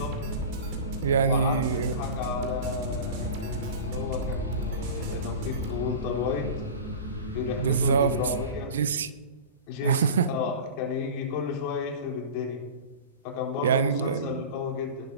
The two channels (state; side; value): inverted; both; correlation -0.33